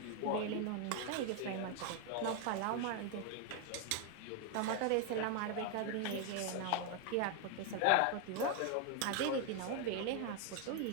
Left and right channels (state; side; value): different; both; correlation 0.00